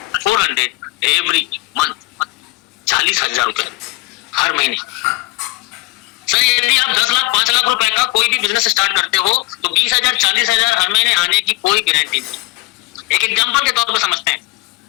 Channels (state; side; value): quieter; right; 21.0 dB